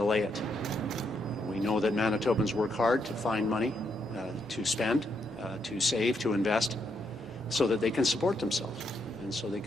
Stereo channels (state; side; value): normal; both; correlation 0.78